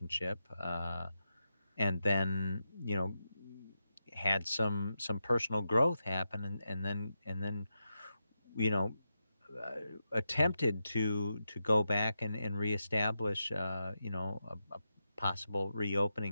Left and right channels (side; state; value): both; inverted; correlation -0.87